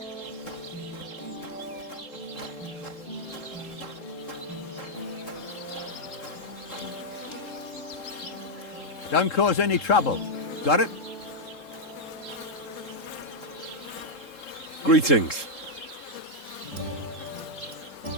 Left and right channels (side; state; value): right; late; 3.7 ms